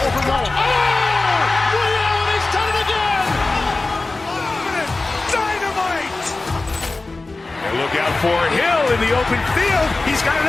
He's done it again. Dynamite. And look out for Hill in the open field. He's got an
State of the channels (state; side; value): quieter; right; 3.3 dB